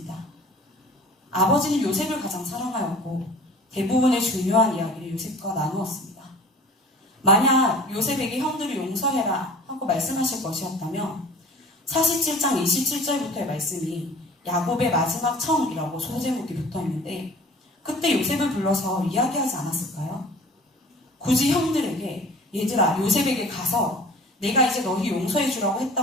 아버지는 요셉을 가장 사랑하였고 대부분의 중요한 이야기를 요셉과 나누었습니다. 만약 요셉에게 형들을 용서해라 하고 말씀하실 것이었다면 47장 27절부터의 말씀이 야곱의 마지막 청이라고 소제목이 붙어있는데 그때 요셉을 불러서 이야기하지 않았을까요? 굳이 형들에게 얘들아 요셉에게 가서 내가 이제 너희 용서해 주라고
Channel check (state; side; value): normal; both; correlation 0.44